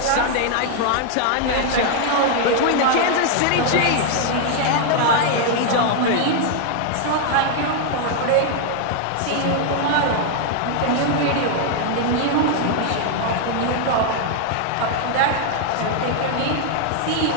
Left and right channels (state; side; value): different; both; correlation 0.00